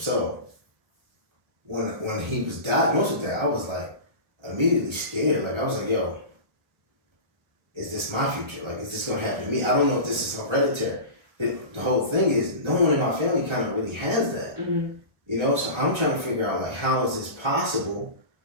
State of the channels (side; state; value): left; late; 1.1 ms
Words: when he was diagnosed with that, I was like immediately scared. Like I was like, yo, is this my future? Like, is this gonna happen to me? I don't know if this is hereditary. The whole thing is no one in my family kind of really has that. So I'm trying to figure out like how is this possible?